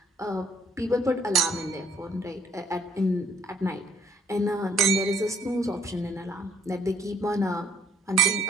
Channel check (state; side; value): normal; both; correlation 0.63